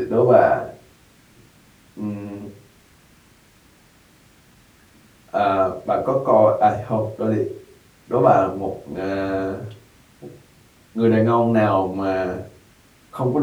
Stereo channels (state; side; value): identical; both; correlation 1.00